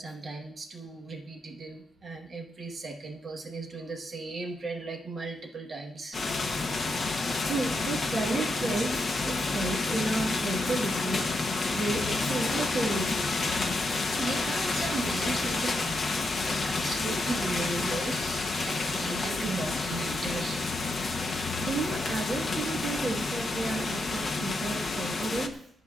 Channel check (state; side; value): normal; both; correlation 0.83